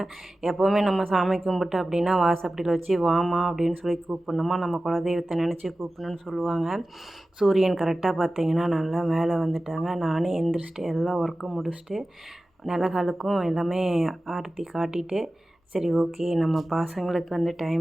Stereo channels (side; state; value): both; normal; correlation 0.96